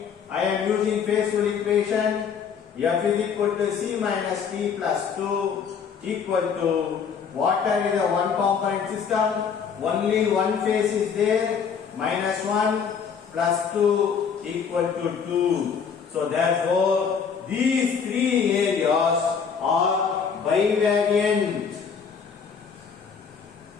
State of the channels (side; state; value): right; quieter; 6.6 dB